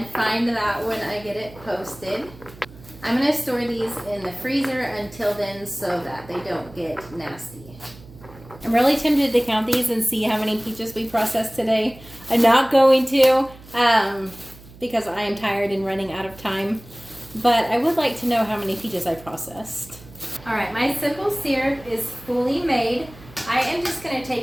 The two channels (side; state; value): right; noise; hum, 20 dB below the sound